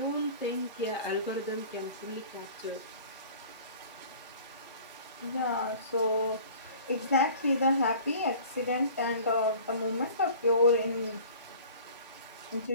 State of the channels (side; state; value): both; inverted; correlation -0.45